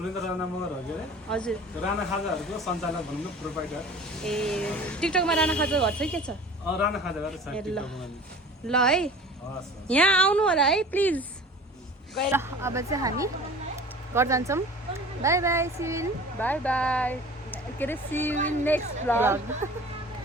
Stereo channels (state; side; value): normal; both; correlation 0.42